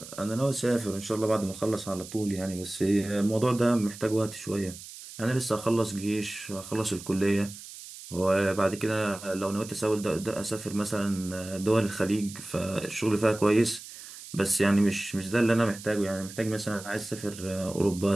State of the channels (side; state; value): right; noise; hiss, 14 dB below the sound